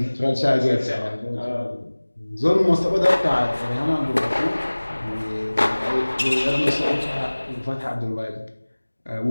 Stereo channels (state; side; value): inverted; both; correlation -1.00